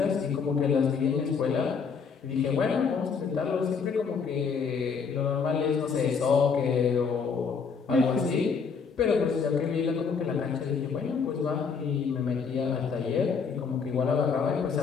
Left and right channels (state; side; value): quieter; right; 5.8 dB